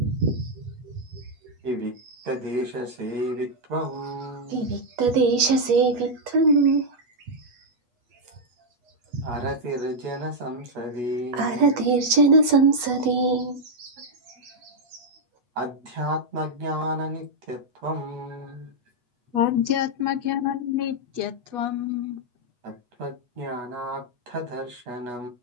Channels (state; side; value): late; left; 8.2 ms